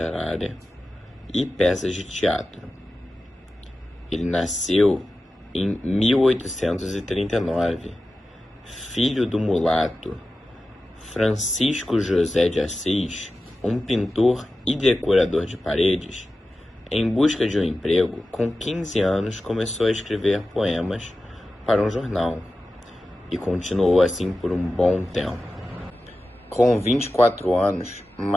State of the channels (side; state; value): both; normal; correlation 0.94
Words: e peças de teatro. Ele nasceu em 1839, filho do mulato Francisco José de Assis, um pintor e decorador de paredes. Em busca de um emprego, com 15 anos começou a escrever poemas para um jornal e continuou assim por um bom tempo. Com 24 anos,